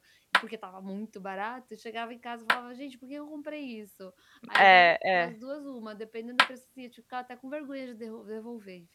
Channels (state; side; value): identical; both; correlation 1.00